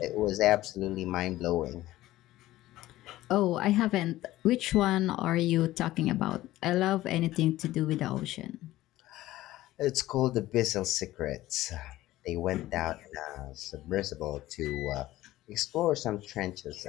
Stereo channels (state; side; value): quieter; right; 15.9 dB